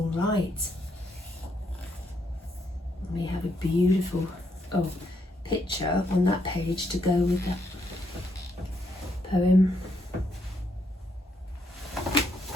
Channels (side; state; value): both; normal; correlation 0.75